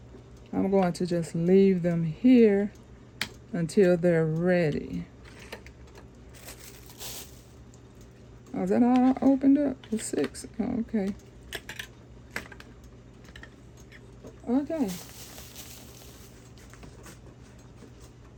I'm going to just leave them here until they're ready. Oh, is that all I opened up? The 6. Oh, okay. Okay.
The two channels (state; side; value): identical; both; correlation 1.00